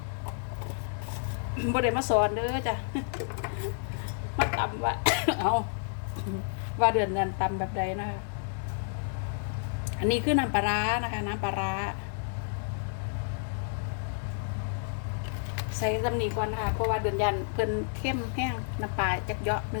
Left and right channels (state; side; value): silent; right; digital silence